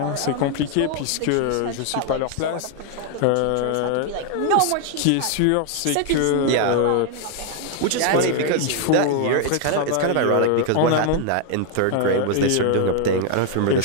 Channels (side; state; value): both; different; correlation 0.00